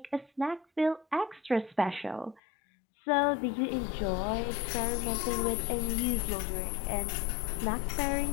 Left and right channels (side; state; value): right; drops out; at 2.4 s